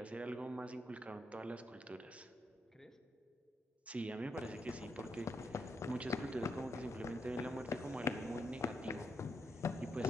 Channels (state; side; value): normal; both; correlation 0.80